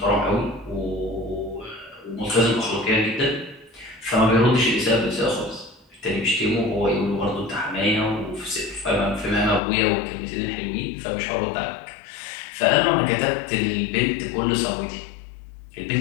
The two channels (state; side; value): drops out; right; at 9.6 s